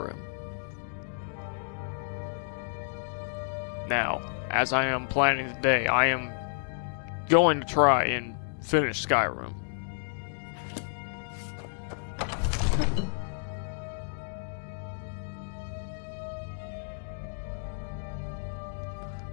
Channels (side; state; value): right; silent; digital silence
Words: Now, as I am planning today, I am going to try and finish Skyrim.